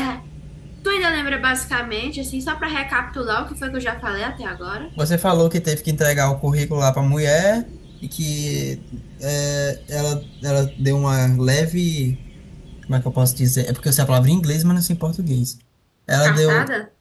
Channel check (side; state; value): both; identical; correlation 1.00